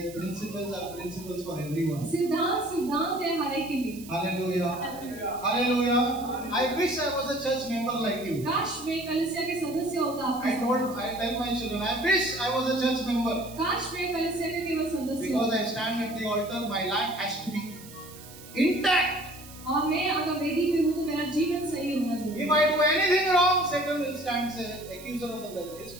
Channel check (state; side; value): noise; right; hiss, 18 dB below the sound